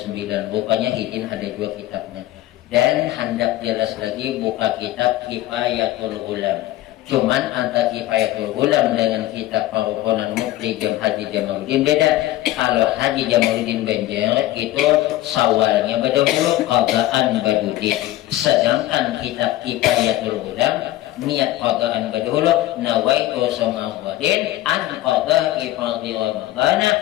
Rupanya hidin ada dua kitabnya. Dan hendak jelas lagi buka kitab Kifayatul Ulam. Cuman antara Kifayatul Ulam dengan kitab Perukunan Mufti Haji Jamaluddin beda. Kalau Haji Jamaluddin Banjar itu Syawalnya berdahulu, qadhaan badudi. Sedangkan kitab Kifayatul Ulam niat qadhaan berdahulu, nawaitu samawadin an qadha'i fardhi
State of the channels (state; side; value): quieter; right; 15.5 dB